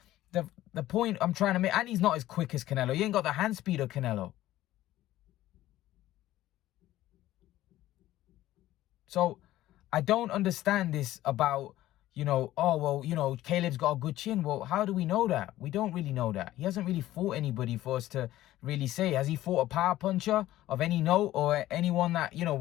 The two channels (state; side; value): quieter; right; 14.8 dB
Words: the point I'm trying to make, and he's not as quick as Canelo. He ain't got the hand speed of Canelo. So I don't understand this about, you know, oh, well, you know, Caleb's got a good chin. Well, how do we know that? We don't really know that. He hasn't really fought anybody for us to really say. Has he fought a power puncher of any note, or anyone that, you know,